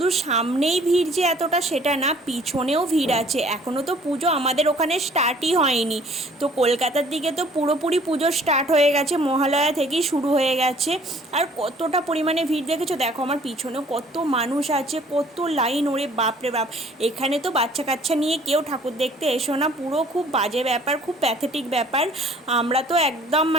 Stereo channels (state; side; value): normal; both; correlation 0.55